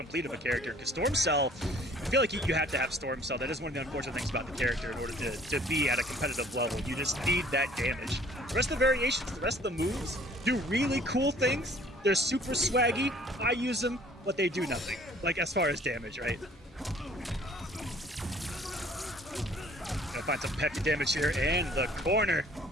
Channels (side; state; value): both; normal; correlation 0.55